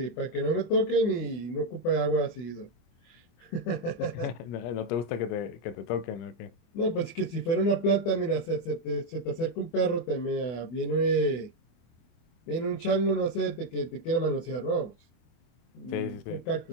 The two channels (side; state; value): right; late; 24 ms